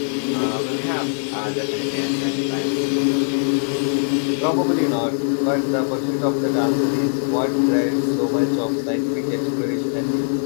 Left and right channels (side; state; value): right; silent; 55 dB below the other